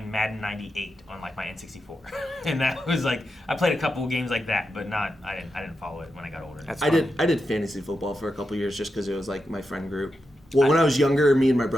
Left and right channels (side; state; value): both; normal; correlation 0.88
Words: Madden '98 on my N64, and that was I played a couple of games like that, but I didn't follow it when I got older. I did fantasy football for a couple of years just because it was my friend group. Well, when I was younger, me and my